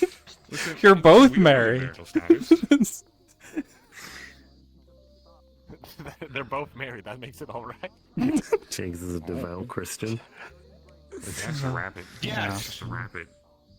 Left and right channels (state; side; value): identical; both; correlation 1.00